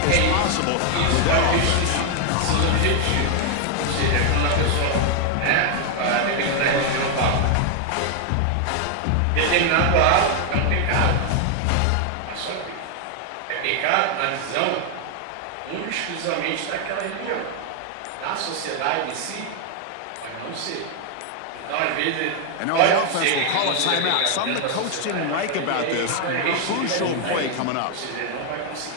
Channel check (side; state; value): both; different; correlation 0.00